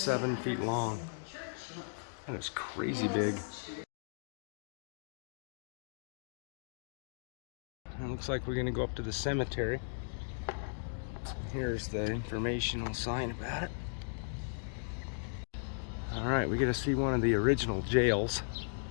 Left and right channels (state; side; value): silent; right; digital silence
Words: feet long. That is crazy big. It looks like we're gonna go up to the cemetery. Here's the informational sign about it. Alright, we get to see one of the original jails.